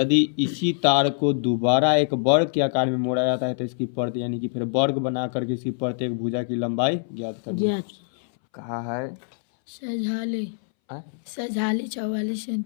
इसी तार को दोबारा एक वर्ग के आकार में मोड़ा जाता है तो इसकी प्रत्येक, यानी कि फिर वर्ग बना करके इसकी प्रत्येक भुजा की लंबाई ज्ञात करनी है। कहा है सजाले सजाली 44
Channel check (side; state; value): right; silent; 61 dB below the other